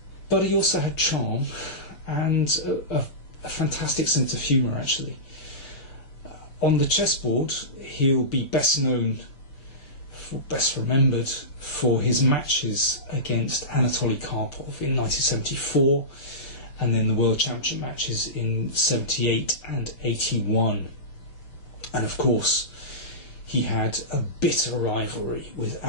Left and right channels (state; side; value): late; right; 6.9 ms